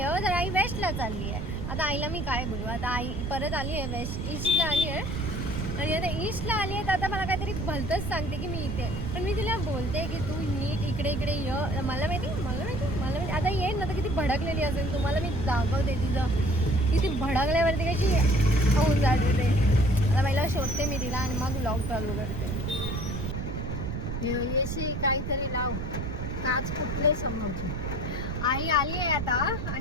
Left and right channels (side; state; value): right; noise; rumble, 4 dB below the sound